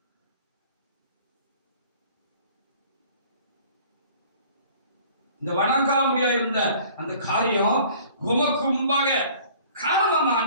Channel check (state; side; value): inverted; both; correlation -0.51